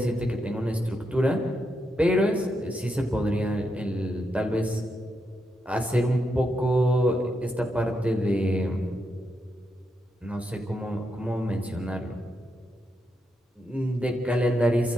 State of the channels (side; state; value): both; normal; correlation 0.83